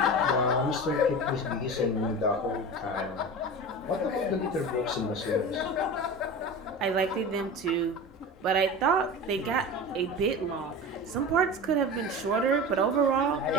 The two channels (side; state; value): both; normal; correlation 0.30